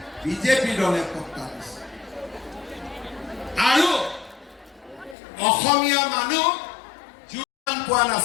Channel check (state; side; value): drops out; right; at 5.2 s